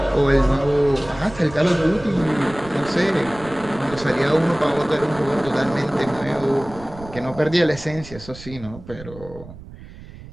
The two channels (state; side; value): noise; right; rumble, 16 dB below the sound